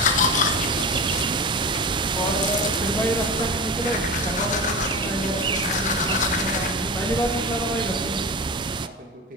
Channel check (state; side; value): normal; both; correlation 0.26